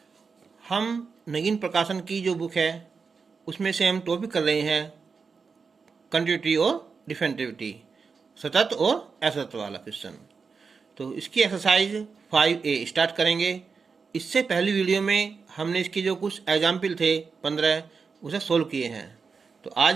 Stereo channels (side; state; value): left; quieter; 5.2 dB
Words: हम नगीन प्रकाशन की जो बुक है उसमें से हम टॉपिक कर रहे हैं कंटिन्यूटी और डिफरेंटिविटी, सतत और असतत वाला क्वेश्चन। तो इसकी एक्सरसाइज 5A स्टार्ट करेंगे। इससे पहली वीडियो में हमने इसके जो कुछ एग्जाम्पल थे 15 उसे सोल्व किए हैं। तो